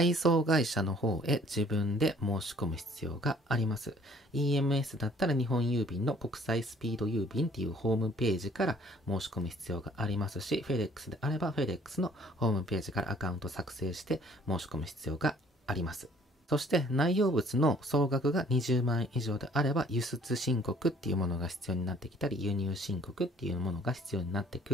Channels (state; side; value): normal; both; correlation 0.58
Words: 送会社の方へ自分で申し込む必要があります。EMS だったら日本郵便の国際スピード郵便っていうホームページから申し込む必要がありますし、FedEx であれば FedEx のホームページからアカウント作成して申し込む必要があります。そして内容物の総額が20万円以上であれば輸出申告っていうものが必要になってきたり、輸入申告っていうものが必要になってく